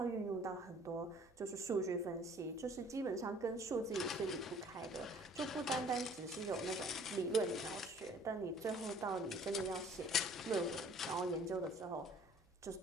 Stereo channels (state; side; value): normal; both; correlation 0.54